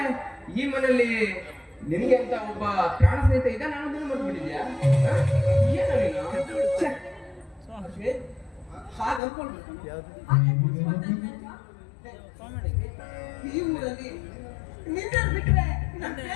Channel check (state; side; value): drops out; right; at 9.2 s